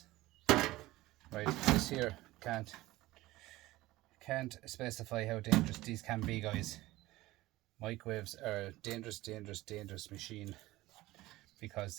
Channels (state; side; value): quieter; left; 18.0 dB